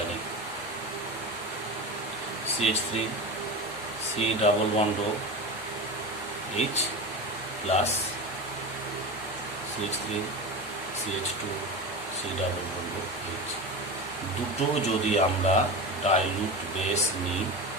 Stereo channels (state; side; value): noise; left; rumble, 30 dB below the sound